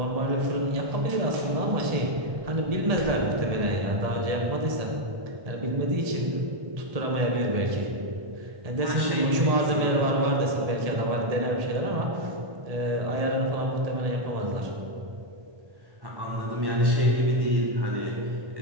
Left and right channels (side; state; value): left; late; 1.7 ms